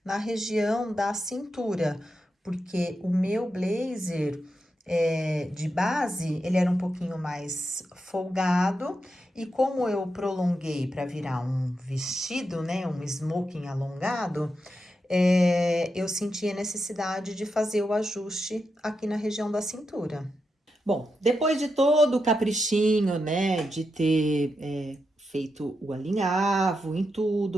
na região da cintura, porque o meu blazer de base, ele era um pouquinho mais folgado, e como eu prolonguei para virar um vestido, né, um smoking alongado, eu senti a necessidade de fazer o ajuste aqui na região da cintura. Bom, depois de todo o caprichinho, né, de ter feito o alinhavo em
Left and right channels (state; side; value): normal; both; correlation 0.86